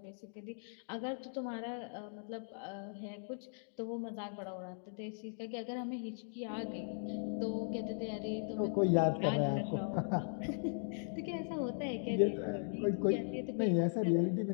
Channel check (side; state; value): right; silent; digital silence